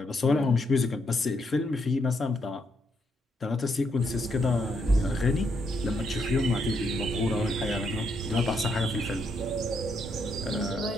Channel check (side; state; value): both; normal; correlation 0.76